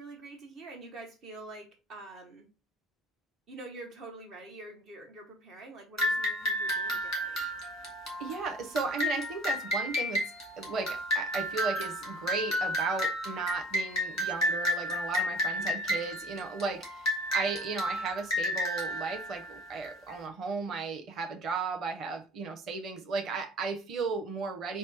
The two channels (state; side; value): normal; both; correlation 0.46